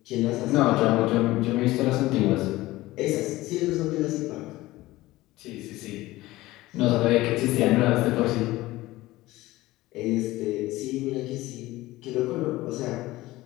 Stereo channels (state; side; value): quieter; right; 18.1 dB